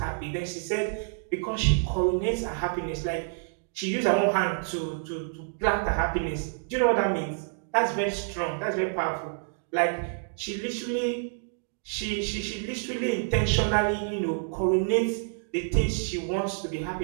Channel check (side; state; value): left; silent; digital silence